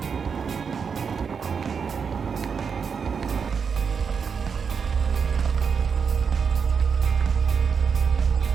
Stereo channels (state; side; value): quieter; left; 6.1 dB